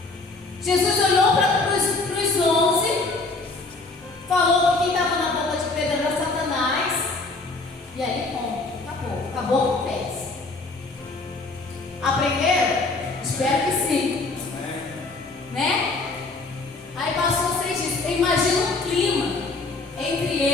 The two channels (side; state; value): right; quieter; 3.5 dB